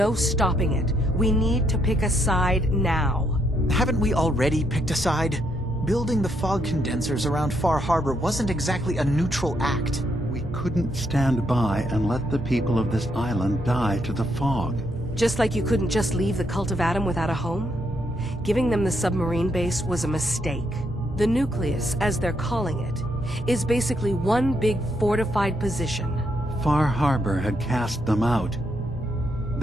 stopping it. We need to pick a side now. Haven't we already picked a side? Building the fog condensers around Far Harbor wasn't exactly a neutral act. We couldn't stand by and let the people of this island die to the fog. Just like you couldn't just leave the Cult of Adam without a home? Giving them the submarine base was a mistake. The nucleus, as they're calling it, is basically one big fortified position. Far Harbor had cast them out.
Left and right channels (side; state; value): both; normal; correlation 0.76